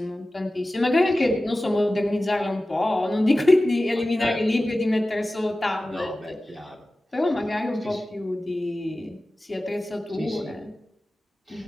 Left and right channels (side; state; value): both; normal; correlation 0.96